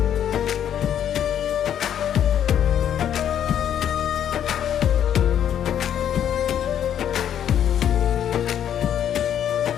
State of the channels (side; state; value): right; quieter; 9.7 dB